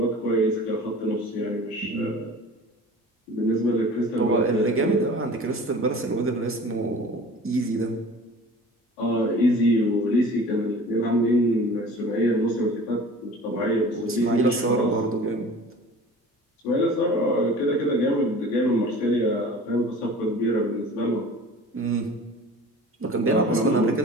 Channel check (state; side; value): normal; both; correlation 0.42